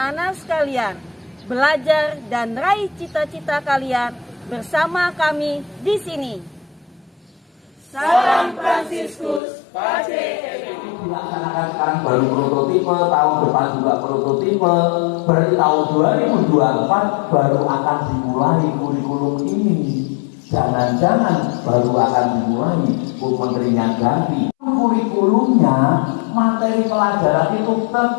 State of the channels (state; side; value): drops out; right; at 9.4 s